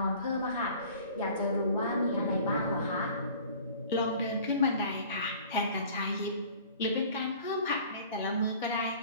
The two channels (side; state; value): both; inverted; correlation -0.47